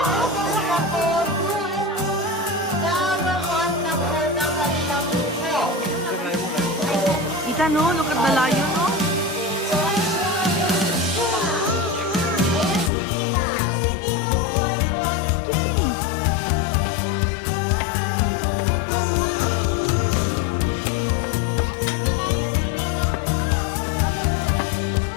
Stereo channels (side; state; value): right; drops out; at 12.9 s